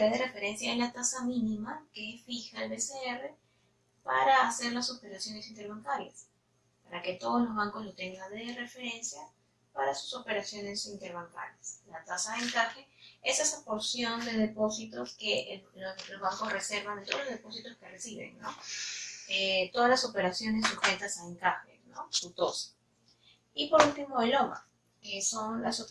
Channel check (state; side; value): identical; both; correlation 1.00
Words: de referencia es la tasa mínima que fija el BCR para hacer las operaciones interbancarias, para que todos los bancos lo tengan de referencia para sus operaciones interbancarias. La tasa de encaje es esa porción de depósitos que los bancos reservan de todos los depósitos que reciben, ¿no? Todas las operaciones sujetas a encaje, ¿no? Su TOS. Y por último el OMA, que son las